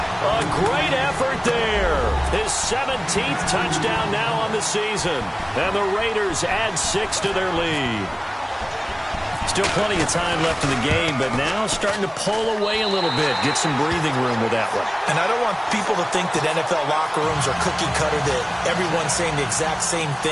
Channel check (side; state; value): both; identical; correlation 1.00